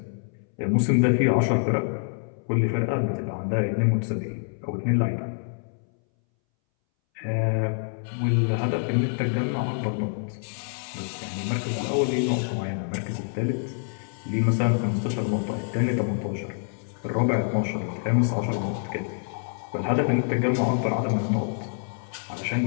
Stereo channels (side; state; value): right; silent; 61 dB below the other